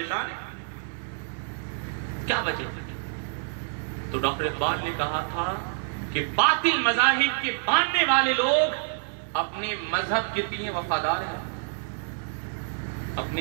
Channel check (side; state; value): left; silent; 57 dB below the other